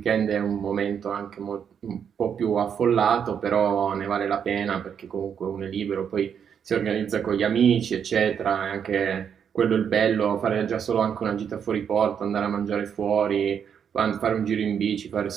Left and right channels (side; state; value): left; quieter; 7.8 dB